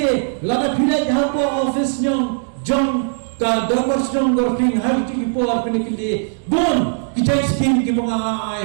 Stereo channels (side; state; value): left; silent; digital silence